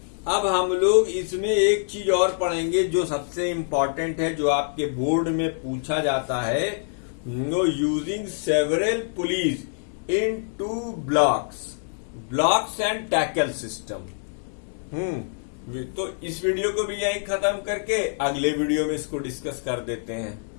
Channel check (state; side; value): silent; right; digital silence